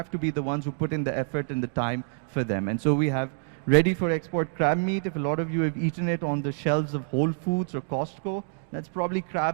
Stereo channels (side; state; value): left; silent; digital silence